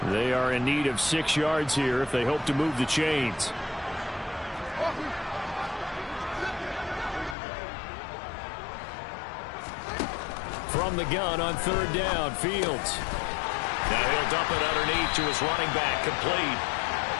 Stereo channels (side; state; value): right; drops out; at 7.4 s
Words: They are in need of 6 yards here if they hope to move the chains. from the gun on third down. Fields. Now he'll dump it underneath to his running back, complete.